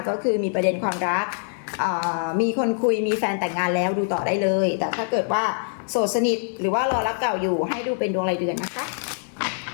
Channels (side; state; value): right; silent; 63 dB below the other